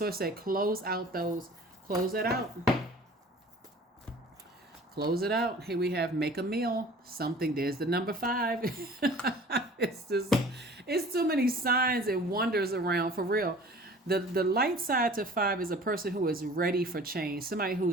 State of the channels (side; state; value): both; normal; correlation 0.46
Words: said, close out those, close it out. Close it out. Here we have make a meal. Something, there's the number 5. It's too many signs and wonders around, for real. The light side to 5 is a person who is ready for change, somebody